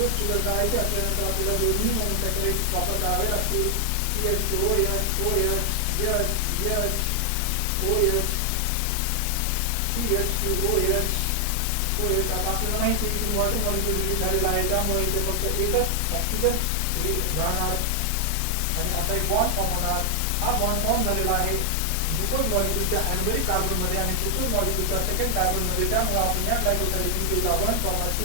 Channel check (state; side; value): different; both; correlation 0.00